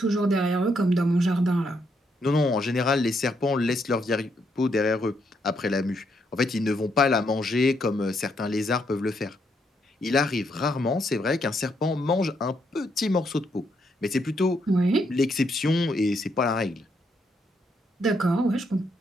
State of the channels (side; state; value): both; normal; correlation 0.76